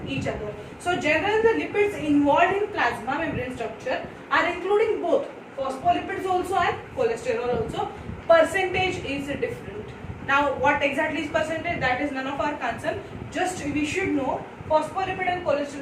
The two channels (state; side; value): identical; both; correlation 1.00